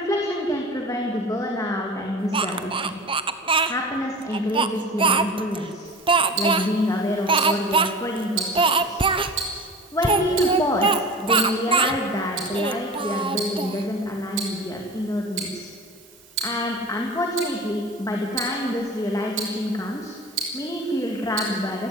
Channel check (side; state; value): both; normal; correlation 0.34